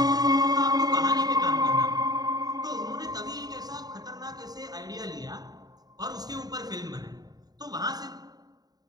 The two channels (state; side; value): late; left; 0.19 ms